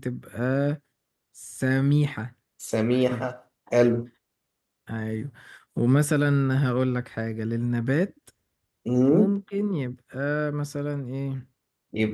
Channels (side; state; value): both; identical; correlation 1.00